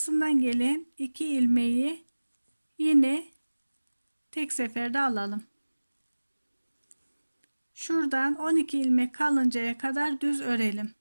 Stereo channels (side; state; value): both; inverted; correlation -1.00